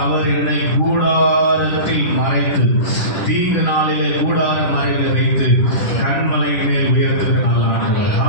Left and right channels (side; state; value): right; late; 10 ms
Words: அவர் என்னை கூடாரத்தில் மறைத்து தீங்கு நாளிலே கூடார மறைவில் வைத்து கண்மலையின் மேல் உயர்த்துகிற நல்ல ஆண்டவர்.